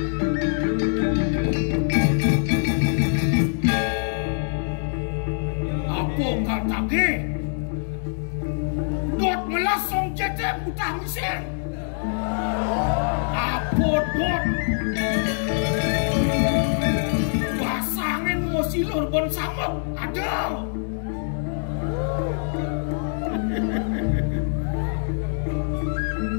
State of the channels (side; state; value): right; silent; digital silence